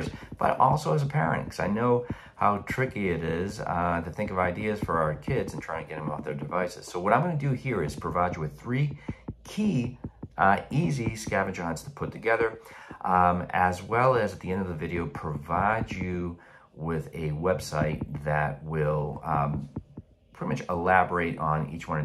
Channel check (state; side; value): identical; both; correlation 1.00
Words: but also as a parent, because I know how tricky it is to think of ideas for our kids and trying to get them off their devices. So what I'm going to do here is provide you with three key easy scavenger hunts to put together, as well as at the end of the video provide you with a website that will pretty much elaborate on each one